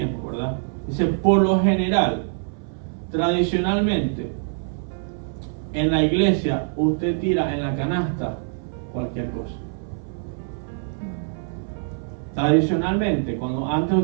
¿verdad? Dice, por lo general, tradicionalmente, en la iglesia, usted tira en la canasta cualquier cosa. Tradicionalmente, cuando antes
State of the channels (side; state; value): left; silent; 63 dB below the other